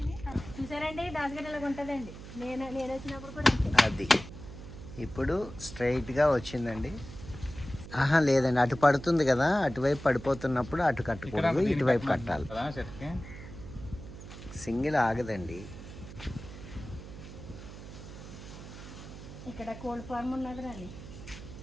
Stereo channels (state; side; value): noise; right; hum, 13 dB below the sound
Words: చూసారండి, దాసగడ్డలాగా ఉంటుందండి. నేను వచ్చినప్పుడు కూడా అది ఇప్పుడు స్ట్రైట్గా వచ్చిందండి. లేదండి, అటు పడుతుంది కదా, అటువైపు పడిపోతున్నప్పుడు అటు కట్టకూడదు, ఇటువైపు కట్టాలి. సింగిల్ ఆగదండి. ఇక్కడ కోల్డ్ ఫార్మ్ ఉన్నది రాని.